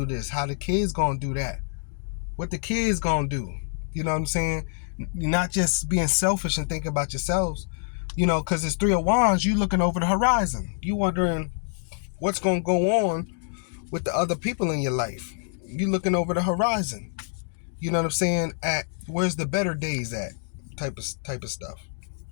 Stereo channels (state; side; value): silent; right; 61 dB below the other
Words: this? How the kids going to do that? What the kids going to do? You know what I'm saying? Not just being selfish and thinking about yourselves. Because it's 3 of Wands, you looking over the horizon. You wondering what's going to go on with the other people in your life. You looking over the horizon. You know what I'm saying? At where's the better days at? Type of stuff.